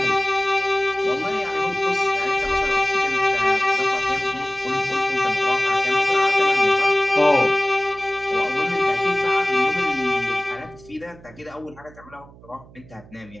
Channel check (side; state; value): right; noise; hum, 22 dB below the sound